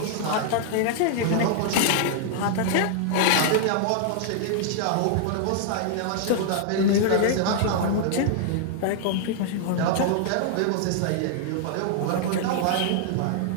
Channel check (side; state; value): both; different; correlation -0.01